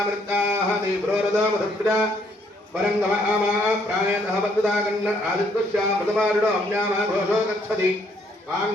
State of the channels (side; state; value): both; normal; correlation 0.68